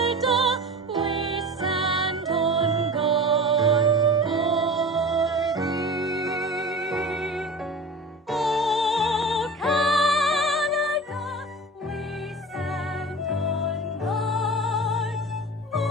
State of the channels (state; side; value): normal; both; correlation 0.35